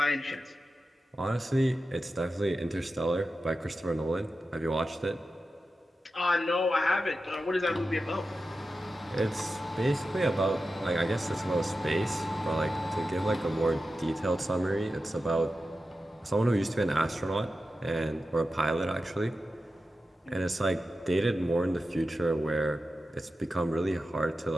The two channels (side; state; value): both; normal; correlation 0.92